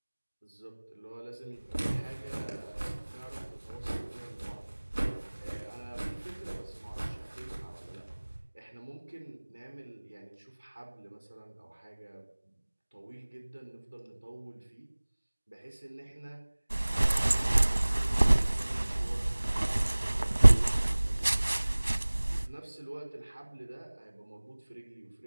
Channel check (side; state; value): both; inverted; correlation -1.00